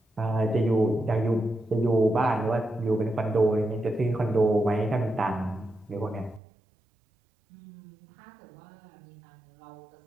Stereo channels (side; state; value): left; drops out; at 6.4 s